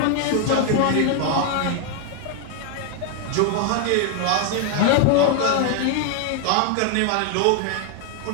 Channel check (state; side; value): different; both; correlation 0.01